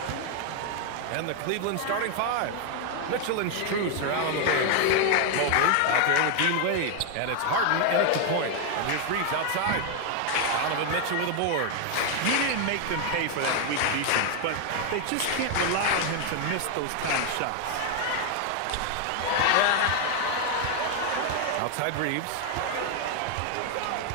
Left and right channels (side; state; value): both; different; correlation 0.00